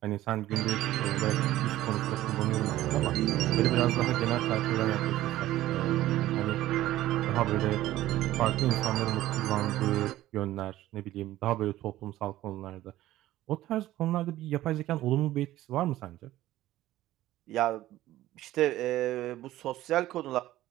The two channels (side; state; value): left; quieter; 15.0 dB